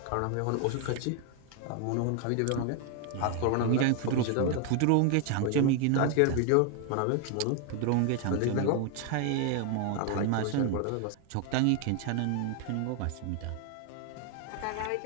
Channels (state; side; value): different; both; correlation 0.00